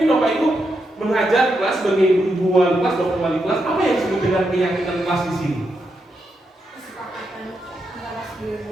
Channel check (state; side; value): normal; both; correlation 0.83